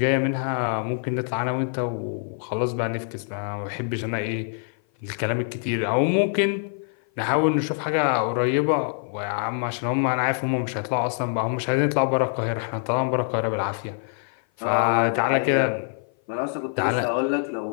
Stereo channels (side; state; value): right; silent; 55 dB below the other